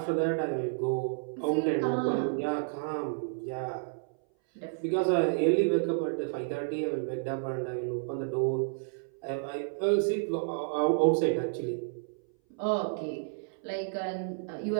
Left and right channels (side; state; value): left; silent; 57 dB below the other